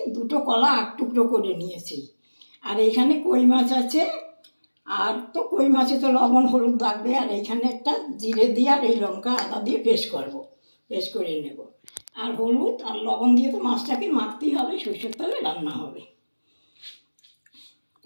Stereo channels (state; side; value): inverted; both; correlation -1.00